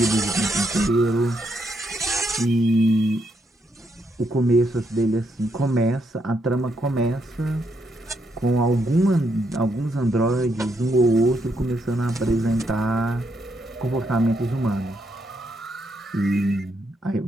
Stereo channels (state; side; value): normal; both; correlation 0.77